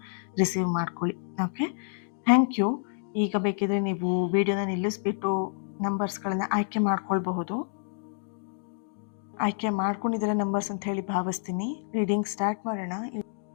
ರಿಸೀವ್ ಮಾಡ್ಕೊಳ್ಳಿ, ಓಕೆ? Thank you. ಈಗ ಬೇಕಿದ್ರೆ ನೀವು ವಿಡಿಯೋನ ನಿಲ್ಲಿಸ್ಬಿಟ್ಟು ನಂಬರ್ಸ್ಗಳನ್ನ ಆಯ್ಕೆ ಮಾಡ್ಕೊಳ್ಬಹುದು. ಆಯ್ಕೆ ಮಾಡ್ಕೊಂಡಿದ್ದೀರ ನಂಬರ್ಸ್ ಅಂತ ಹೇಳಿ ಭಾವಿಸ್ತೀನಿ. ರೀಡಿಂಗ್ ಸ್ಟಾರ್ಟ್ ಮಾಡೋಣ.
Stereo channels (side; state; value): right; silent; digital silence